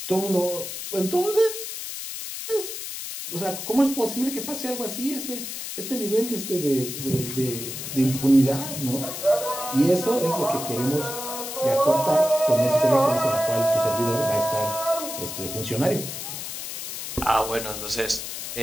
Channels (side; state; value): left; noise; hiss, 7 dB below the sound